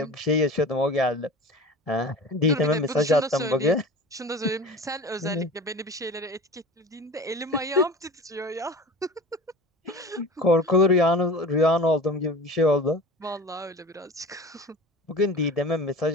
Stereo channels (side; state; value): both; normal; correlation 0.36